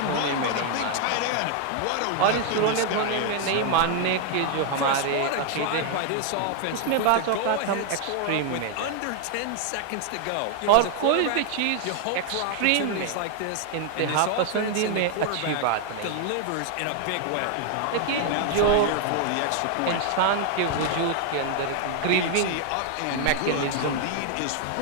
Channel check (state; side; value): different; both; correlation 0.00